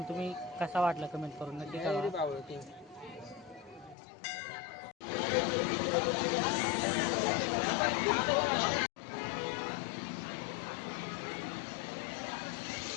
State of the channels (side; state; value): right; drops out; at 4.0 s